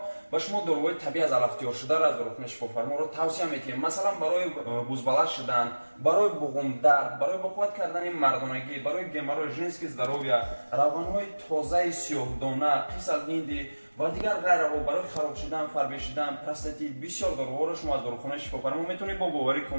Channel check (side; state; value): both; inverted; correlation -1.00